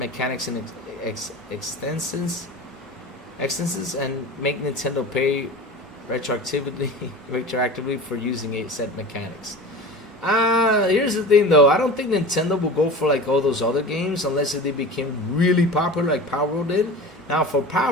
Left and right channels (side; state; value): both; normal; correlation 0.34